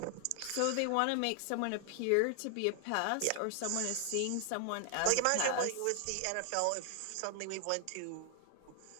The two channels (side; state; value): both; different; correlation 0.00